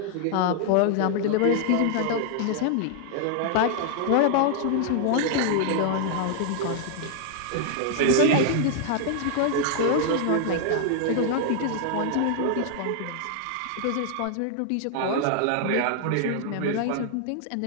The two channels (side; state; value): both; different; correlation 0.00